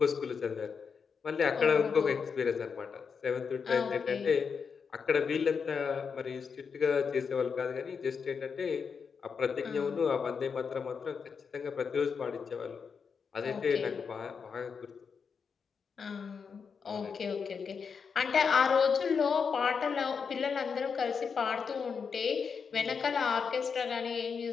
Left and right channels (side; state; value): right; quieter; 6.0 dB